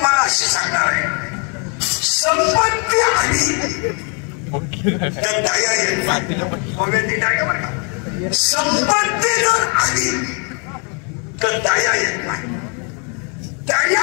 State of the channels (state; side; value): quieter; right; 36.6 dB